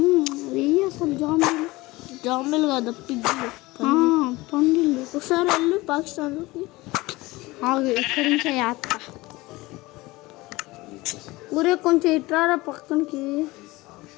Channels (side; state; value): right; quieter; 20.8 dB